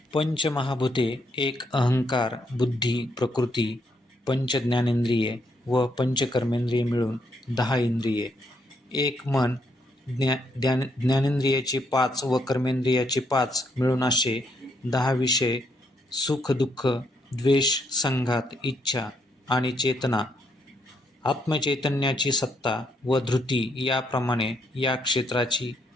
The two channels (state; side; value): normal; both; correlation 0.74